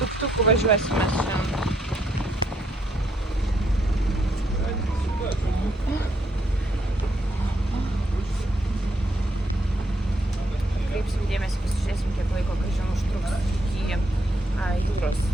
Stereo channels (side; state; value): both; normal; correlation 0.74